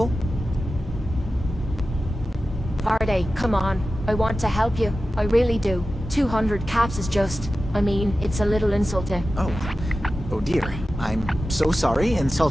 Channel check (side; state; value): both; normal; correlation 0.94